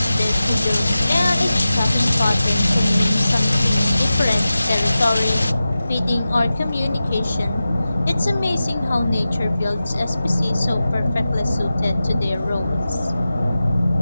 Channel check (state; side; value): inverted; both; correlation -0.94